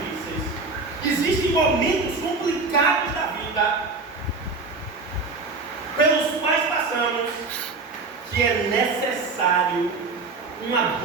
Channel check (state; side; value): quieter; left; 3.9 dB